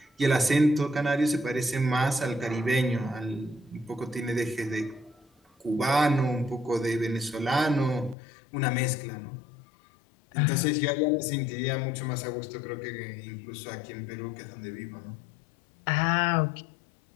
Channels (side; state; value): right; drops out; at 8.2 s